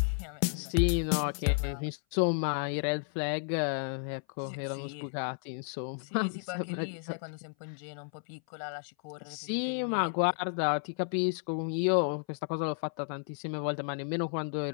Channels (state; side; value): silent; right; 56 dB below the other